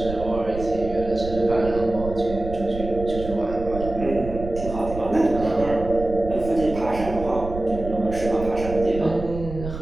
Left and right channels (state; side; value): noise; right; rumble, 9 dB below the sound